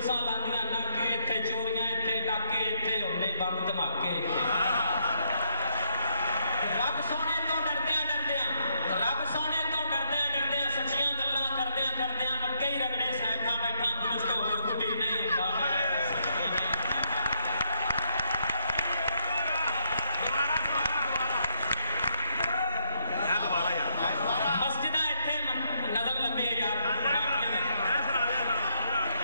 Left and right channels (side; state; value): both; inverted; correlation -0.72